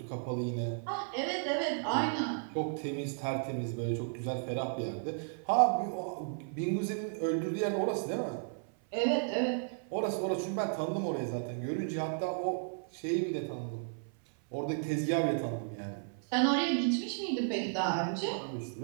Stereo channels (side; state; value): left; silent; 55 dB below the other